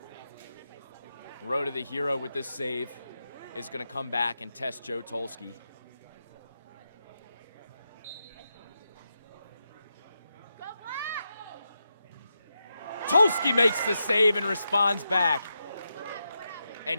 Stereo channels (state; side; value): inverted; both; correlation -0.87